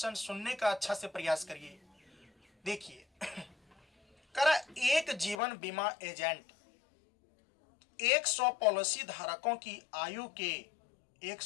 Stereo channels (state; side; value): drops out; right; at 5.4 s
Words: सुनने का अच्छा से प्रयास करिए। देखिए करा, एक जीवन बीमा एजेंट 100 पॉलिसी धारकों की आयु के